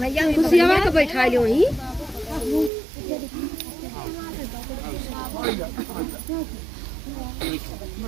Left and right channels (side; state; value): left; drops out; at 2.7 s